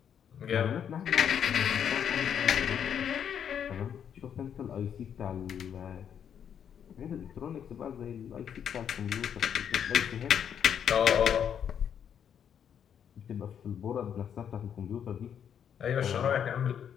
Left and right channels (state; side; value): quieter; right; 8.5 dB